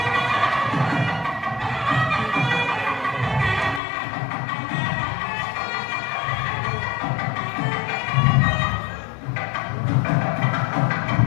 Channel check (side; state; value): right; drops out; at 3.8 s